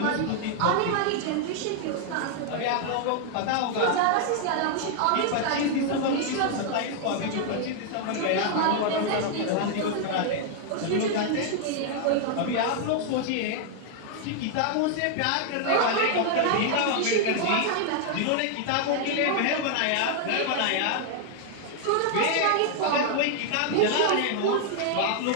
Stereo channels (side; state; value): both; different; correlation 0.00